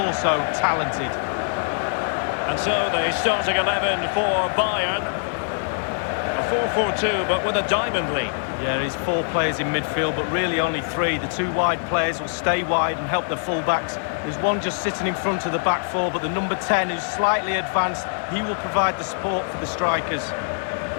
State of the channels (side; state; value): right; silent; 63 dB below the other